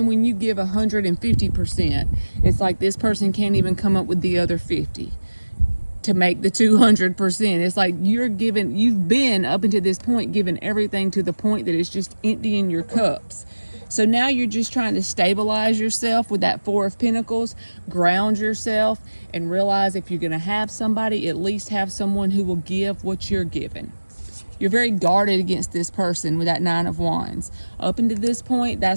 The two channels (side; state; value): both; inverted; correlation -1.00